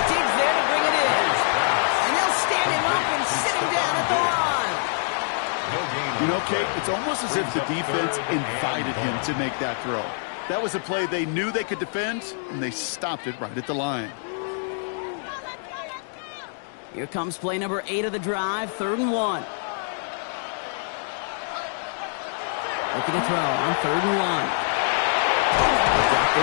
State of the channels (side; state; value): right; silent; digital silence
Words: Digs there to bring it in. And they'll stand him up and sit him down at the line. You know, Kate, it's almost as if the defense invited him to make that throw. That was a play they knew they could defend, and they stopped it right at the line. Here comes play number 8 of the drive, 3rd and 1. Looking to throw on 3rd and 1. Got